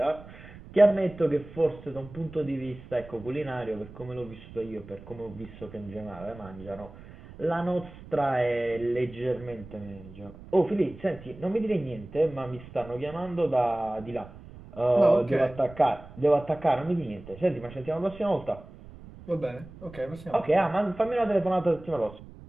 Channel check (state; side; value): noise; right; rumble, 17 dB below the sound